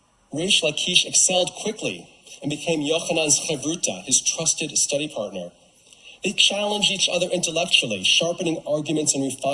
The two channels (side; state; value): both; identical; correlation 1.00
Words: Reish Lakish excelled quickly and became Yochanan's chevruta, his trusted study partner. They challenged each other intellectually, sharpening arguments and